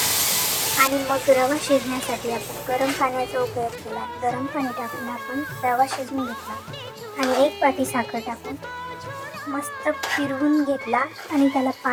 आणि मग रवा शिजण्यासाठी आपण गरम पाण्याचा उपयोग केला। गरम पाणी टाकून आपण रवा शिजवून घेतला आणि एक वाटी साखर टाकून मस्त फिरवून घेतला आणि त्याला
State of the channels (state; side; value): identical; both; correlation 1.00